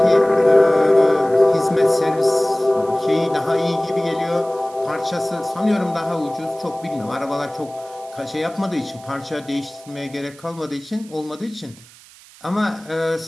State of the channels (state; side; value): noise; right; hiss, 23 dB below the sound